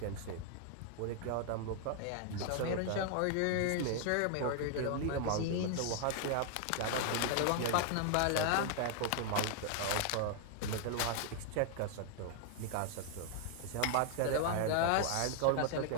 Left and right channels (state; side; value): different; both; correlation 0.00